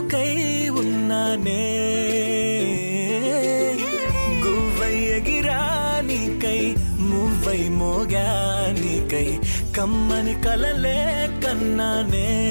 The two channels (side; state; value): both; inverted; correlation -1.00